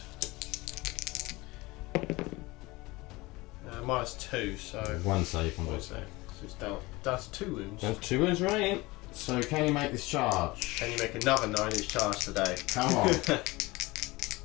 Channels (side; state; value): right; quieter; 21.8 dB